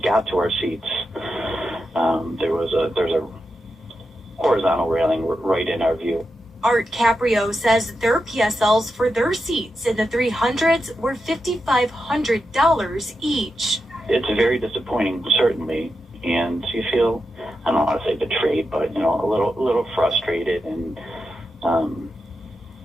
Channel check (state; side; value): normal; both; correlation 0.88